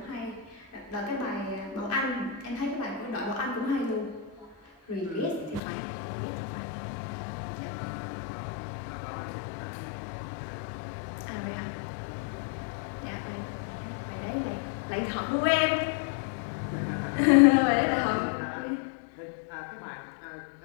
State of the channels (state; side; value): drops out; right; at 5.6 s